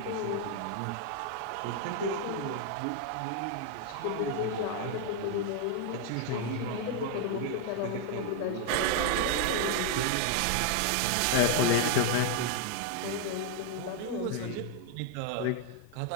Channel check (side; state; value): both; different; correlation 0.00